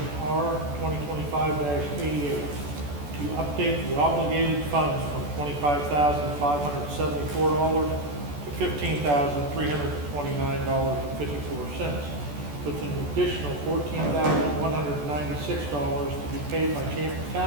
R 2025-88 to update the obligated funds from $25,574 to $15,329.54, with an additional $14,196 to be paid by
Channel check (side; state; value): left; late; 14 ms